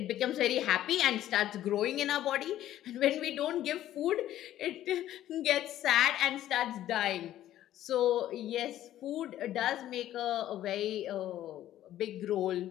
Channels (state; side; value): quieter; right; 12.8 dB